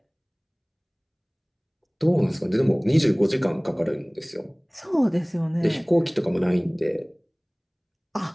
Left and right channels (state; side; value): identical; both; correlation 1.00